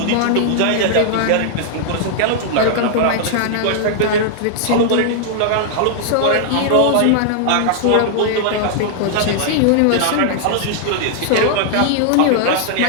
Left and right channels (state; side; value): different; both; correlation -0.01